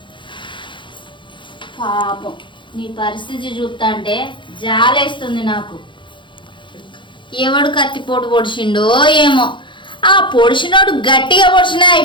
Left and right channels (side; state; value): right; late; 0.23 ms